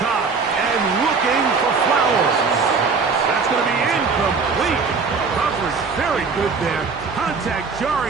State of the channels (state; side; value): quieter; left; 4.9 dB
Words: and looking for Flowers. That's going to be incomplete. Coverage very good there. Contact